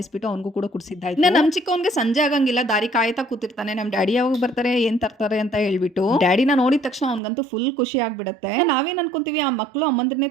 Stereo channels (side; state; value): left; drops out; at 7.2 s